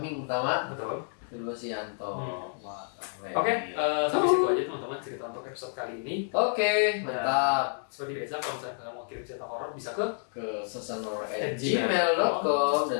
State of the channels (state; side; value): silent; right; digital silence